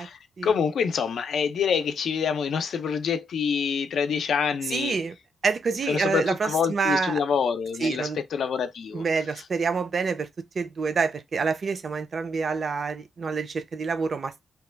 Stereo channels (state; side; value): normal; both; correlation 0.75